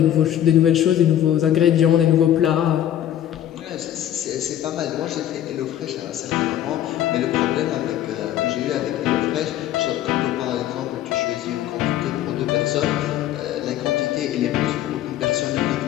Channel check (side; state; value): right; quieter; 11.5 dB